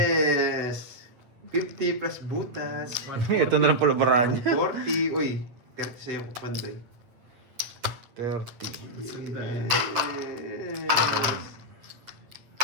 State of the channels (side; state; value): left; late; 8.3 ms